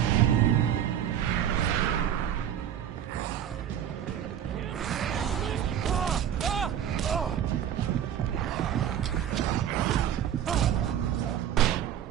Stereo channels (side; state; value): left; quieter; 9.9 dB